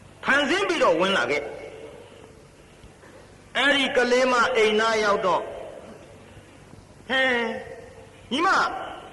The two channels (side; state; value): both; identical; correlation 1.00